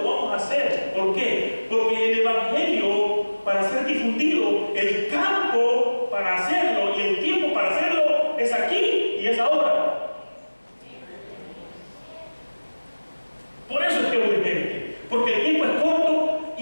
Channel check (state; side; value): inverted; both; correlation -1.00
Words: lo vamos a hacer. ¿Por qué? Porque el evangelio, para ser difundido, el campo para hacerlo y el tiempo para hacerlo es aquí y es ahora. Por eso es que es urgente, porque el tiempo es corto